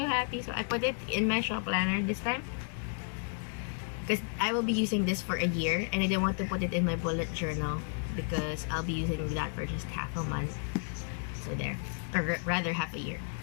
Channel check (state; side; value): silent; right; 56 dB below the other